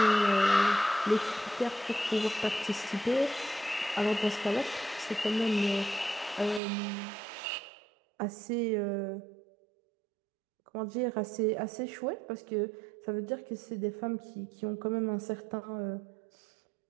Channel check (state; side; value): drops out; left; at 6.6 s